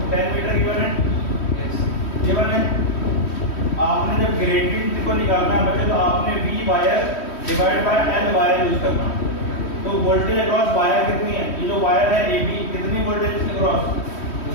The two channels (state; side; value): late; right; 3.1 ms